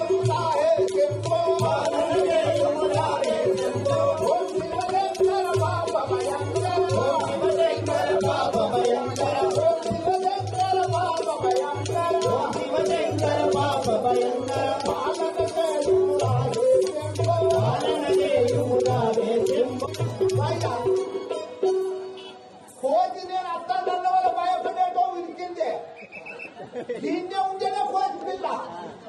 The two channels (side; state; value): both; identical; correlation 1.00